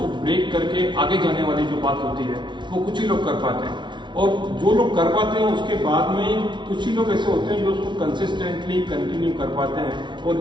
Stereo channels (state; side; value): late; left; 0.23 ms